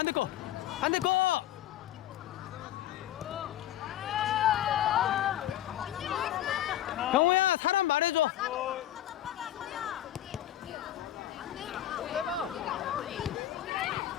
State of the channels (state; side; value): quieter; right; 12.6 dB